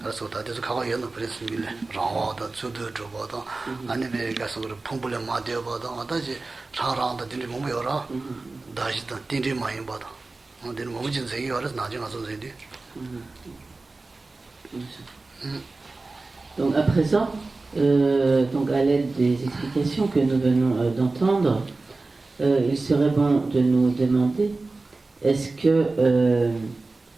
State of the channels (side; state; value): left; quieter; 3.5 dB